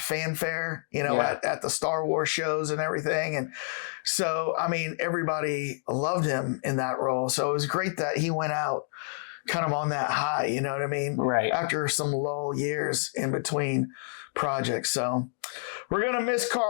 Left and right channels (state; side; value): silent; right; digital silence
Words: at the Star Wars shows and everything. And so, I mean, everybody loved him in that role. So it was great that he went out kind of on that high, you know what I mean? Right. After some lull years in between projects. So we're going to miss